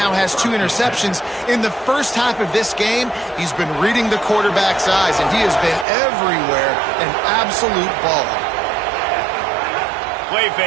has 2 interceptions. In the first half of this game, he's been reading the quarterback's eyes, and he has been everywhere, an absolute baller. play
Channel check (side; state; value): left; drops out; at 5.9 s